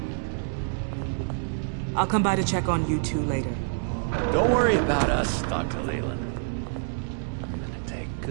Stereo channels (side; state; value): left; silent; 59 dB below the other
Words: I'll come by to check on you two later. Don't worry about us, Dr. Leland. I'm gonna take